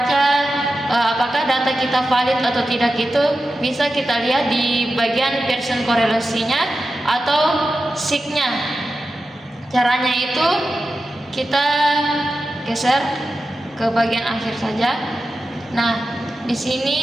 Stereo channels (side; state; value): both; normal; correlation 0.92